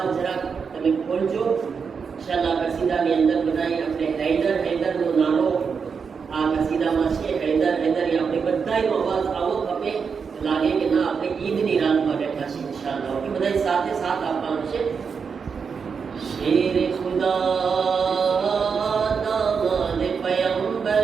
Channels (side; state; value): left; quieter; 5.9 dB